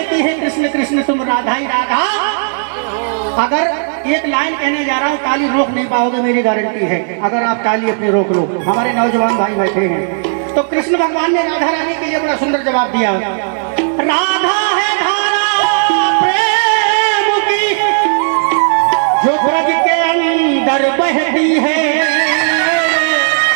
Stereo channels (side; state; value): left; silent; digital silence